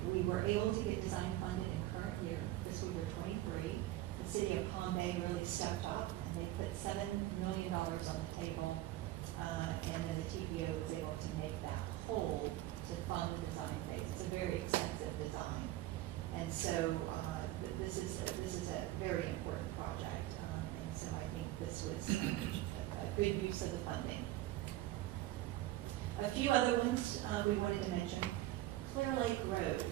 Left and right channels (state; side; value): quieter; left; 15.4 dB